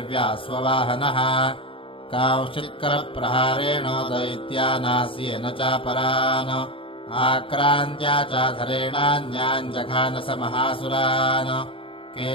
स्ववाहनः कांश्चित्करप्रहारेण दैत्यानास्येन चापरान् आक्रान्त्या चाधरेणान्यान् जघानस महासुरान्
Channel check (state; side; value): late; right; 0.26 ms